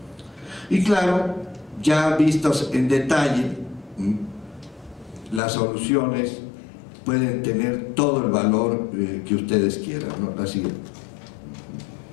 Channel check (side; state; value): right; drops out; at 5.4 s